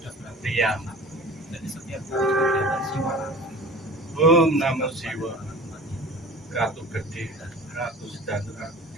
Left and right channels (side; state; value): both; normal; correlation 0.41